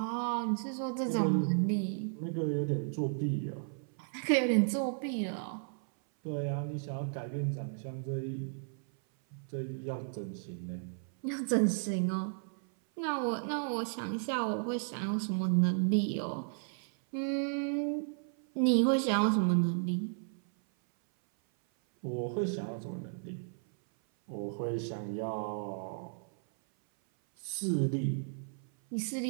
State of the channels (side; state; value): left; silent; 55 dB below the other